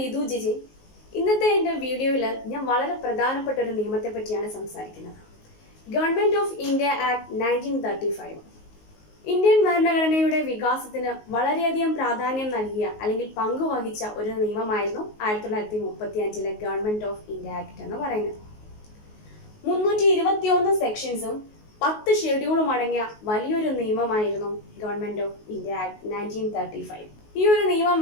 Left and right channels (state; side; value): late; right; 19 ms